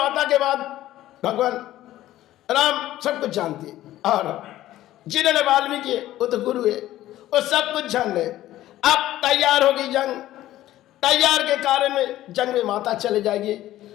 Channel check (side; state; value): right; quieter; 14.4 dB